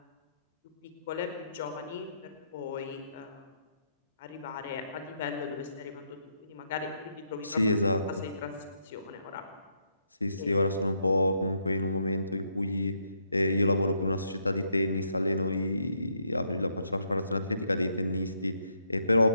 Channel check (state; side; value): inverted; both; correlation -0.76